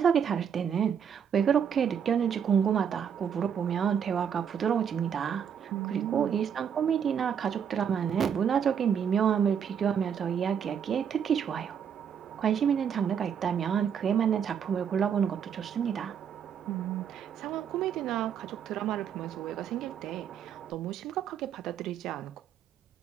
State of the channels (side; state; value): left; quieter; 7.8 dB